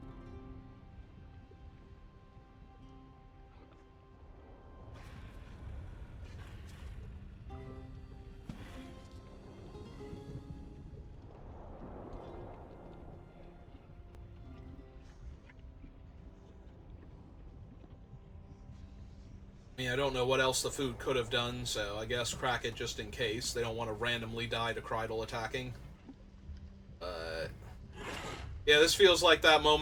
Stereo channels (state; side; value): identical; both; correlation 1.00